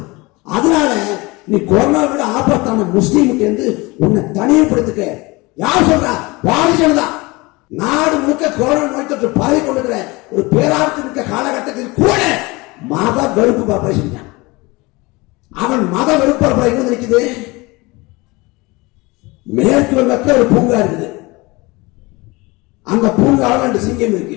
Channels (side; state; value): right; quieter; 23.8 dB